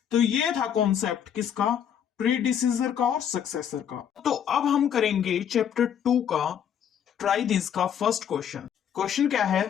तो ये था कॉन्सेप्ट किसका? प्रीडिसीजर का और सक्सेसर का। तो अब हम करेंगे चैप्टर 2 का ट्राई दिस का फर्स्ट क्वेश्चन। क्वेश्चन क्या है?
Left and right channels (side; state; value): right; quieter; 8.8 dB